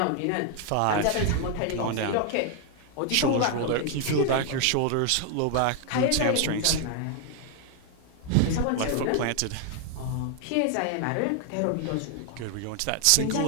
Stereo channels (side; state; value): both; different; correlation 0.00